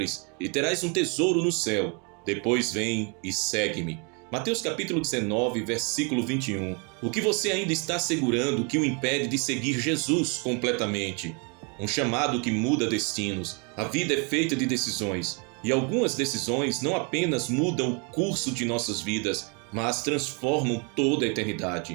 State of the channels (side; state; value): left; quieter; 34.5 dB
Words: e terás um tesouro no céu. Depois vem e segue-me. Mateus capítulo 19, versículo 21. O que você ainda está segurando que o impede de seguir Jesus completamente? Um chamado que muda destinos. A vida é feita de decisões. E algumas decisões não apenas mudam o curso de nossas vidas, mas transformam toda a